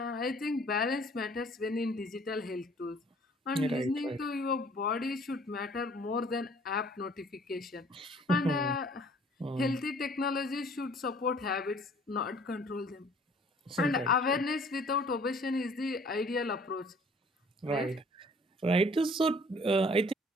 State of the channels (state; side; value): normal; both; correlation 0.55